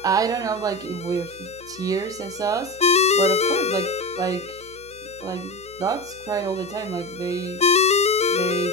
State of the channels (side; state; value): right; noise; hum, 24 dB below the sound